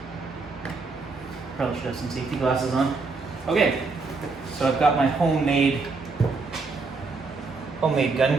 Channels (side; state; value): left; quieter; 4.1 dB